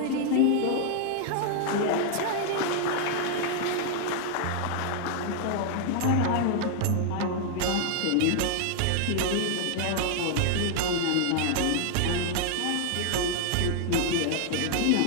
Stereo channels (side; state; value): both; different; correlation 0.00